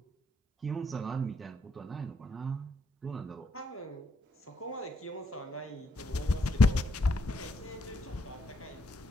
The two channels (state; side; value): normal; both; correlation 0.76